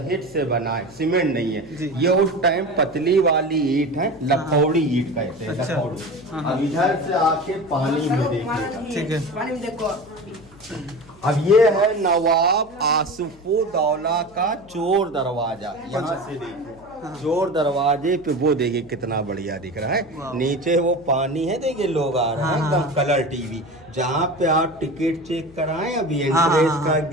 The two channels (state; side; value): noise; left; hum, 25 dB below the sound